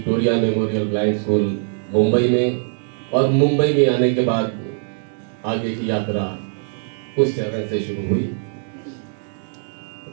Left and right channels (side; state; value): left; silent; digital silence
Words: memorial blind school Mumbai में। और मुंबई में आने के बाद आगे की यात्रा उस चरण से शुरू हुई।